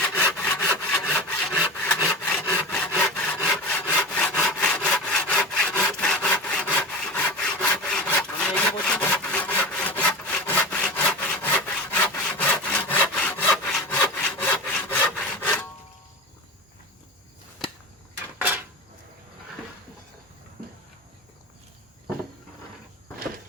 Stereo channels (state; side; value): normal; both; correlation 0.28